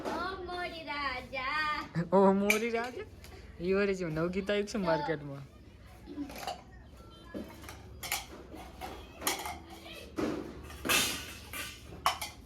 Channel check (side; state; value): both; identical; correlation 1.00